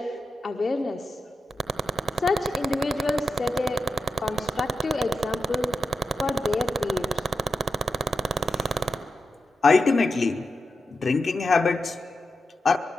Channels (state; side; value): normal; both; correlation 0.88